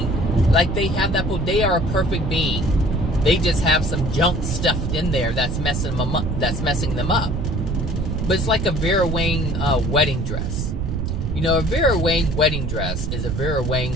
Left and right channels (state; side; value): noise; right; rumble, 2 dB below the sound